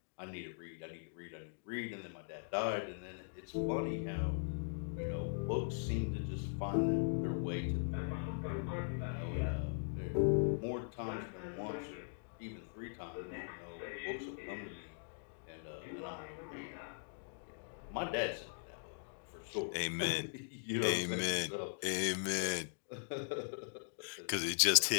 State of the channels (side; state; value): right; silent; digital silence